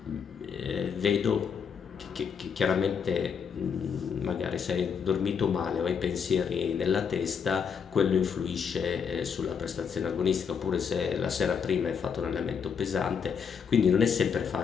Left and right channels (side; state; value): right; quieter; 6.7 dB